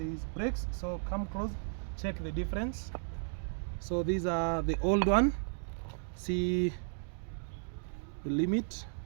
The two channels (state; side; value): silent; left; digital silence